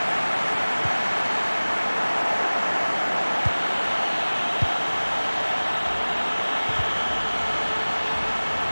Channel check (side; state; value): both; inverted; correlation -1.00